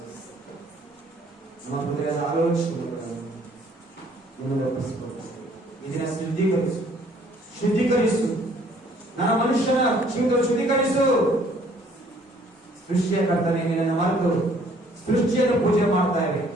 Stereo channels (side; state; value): both; normal; correlation 0.60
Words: ನಮ್ಮ ಹೃದಯದ ಆಲೋಚನೆಗಳನ್ನು ಇದನ್ನ ಶುದ್ಧೀಕರಿಸು. ನನ್ನ ಮನುಷ್ಯನ ಜೀವಿತ ಶುದ್ಧೀಕರಿಸು. ಸೃಷ್ಟಿಯ ಕರ್ತನೆ, ನಿನ್ನನ್ನು ಮರೆತು ಸೃಷ್ಟಿಯನ್ನು ಪೂಜೆ ಮಾಡ್ತಾ ಇವೆ,